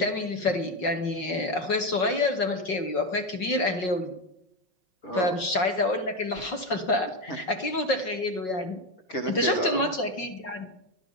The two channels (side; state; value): right; late; 5.5 ms